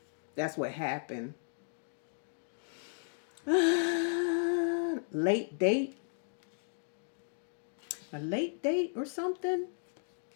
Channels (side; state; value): right; silent; digital silence